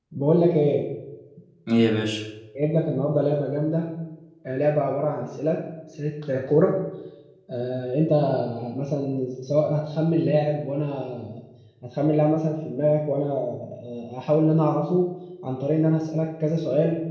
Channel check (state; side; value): identical; both; correlation 1.00